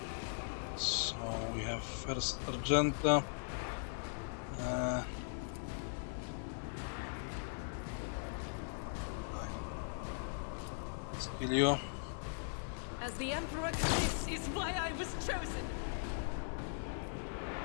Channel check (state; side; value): silent; right; digital silence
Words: So we have first Argenta. Kill you. As the Emperor, this is why I was chosen.